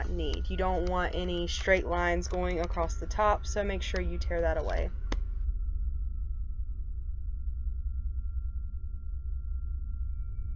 need. You don't want any straight lines going across the top, so make sure you tear that away.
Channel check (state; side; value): identical; both; correlation 1.00